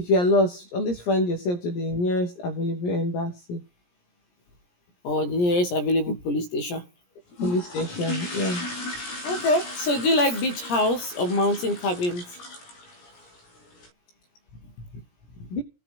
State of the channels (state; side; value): late; right; 17 ms